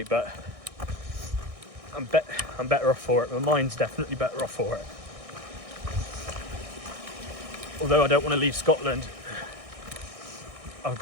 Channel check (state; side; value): late; left; 1.6 ms